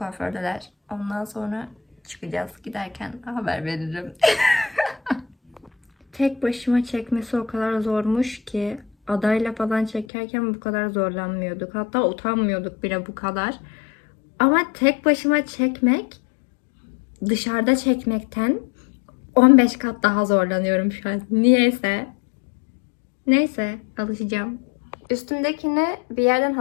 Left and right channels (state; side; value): drops out; right; at 10.1 s